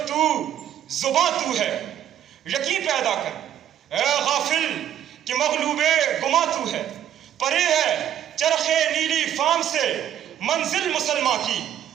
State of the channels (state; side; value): quieter; left; 10.6 dB